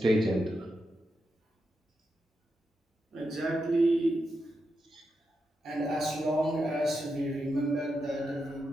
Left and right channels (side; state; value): both; normal; correlation 0.86